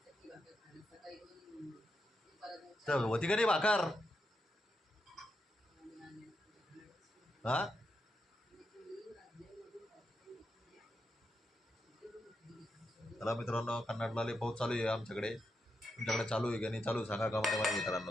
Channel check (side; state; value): both; normal; correlation 0.85